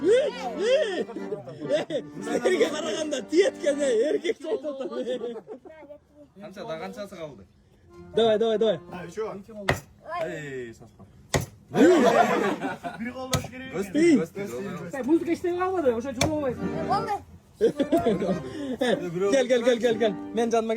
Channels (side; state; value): both; identical; correlation 1.00